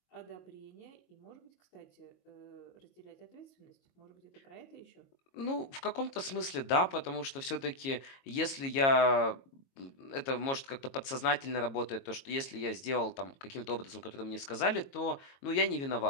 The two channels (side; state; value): right; late; 22 ms